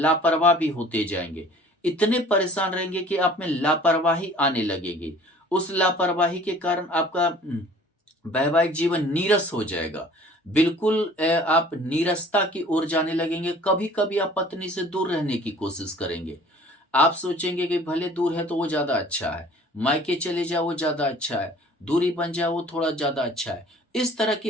भी होते जाएंगे, इतने परेशान रहेंगे कि आप में लापरवाही आने लगेगी। उस लापरवाही के कारण आपका वैवाहिक जीवन नीरस हो जाएगा, बिल्कुल आप नीरसता की ओर जाने लगेंगे। कभी कभी आप पत्नी से दूर रहने की कोशिश करेंगे, आप सोचेंगे कि भले दूर है तो वो ज्यादा अच्छा है, मायके चले जाओ वो ज्यादा अच्छा है, दूरी बन जाए वो थोड़ा ज्यादा अच्छा है, इस तरह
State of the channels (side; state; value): both; normal; correlation 0.50